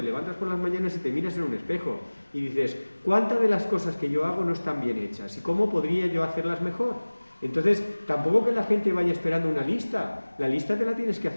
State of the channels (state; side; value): inverted; both; correlation -1.00